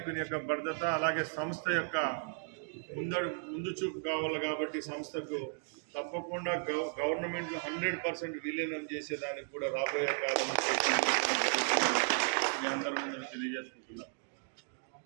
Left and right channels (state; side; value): silent; left; 55 dB below the other